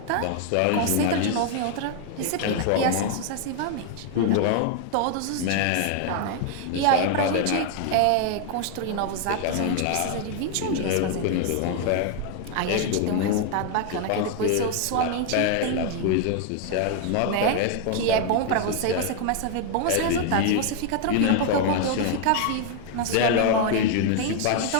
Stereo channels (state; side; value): different; both; correlation 0.00